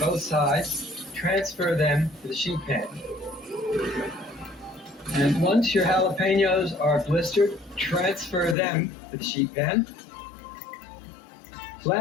sides, transfer them to the sheet pan. And once your jalapenos are blistered, transfer them to the sheet pan.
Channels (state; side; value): drops out; right; at 8.6 s